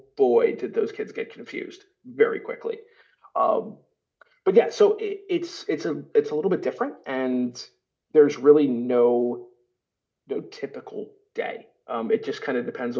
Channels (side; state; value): both; identical; correlation 1.00